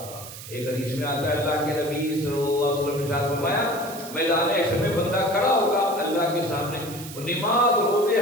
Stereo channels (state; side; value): noise; right; hiss, 13 dB below the sound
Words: ایک حدیث میں آتا ہے اللہ کے نبی صلی اللہ علیہ وسلم نے ارشاد فرمایا میدان حشر میں بندہ کھڑا ہوگا اللہ کے سامنے، نماز روزے